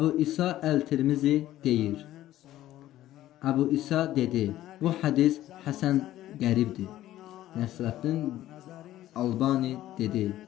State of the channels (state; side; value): quieter; right; 14.0 dB